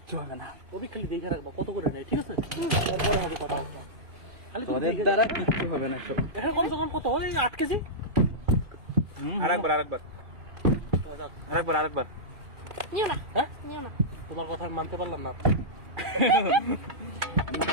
হবে না। ওই খালি দেখে রাখবা কত করে নেয়, ঠিক আছে? তারপরে হবে কথা। ওদের দ্বারা কিচ্ছু হবে না সব। এখন কম সে কম কত ওই 8 কেজি। আরেকবার নিও না, হ্যাঁ নিও না। তোমার কথা আমি মানতে পারলাম না।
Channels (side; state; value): left; late; 2.4 ms